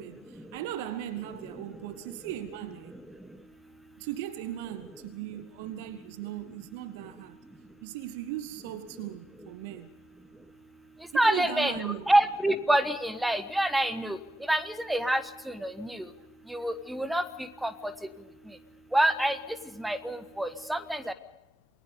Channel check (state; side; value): normal; both; correlation 0.84